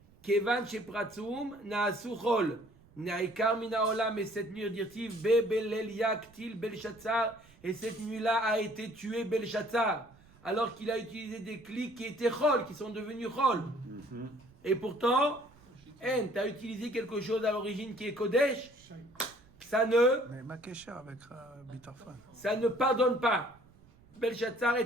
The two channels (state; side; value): noise; right; rumble, 27 dB below the sound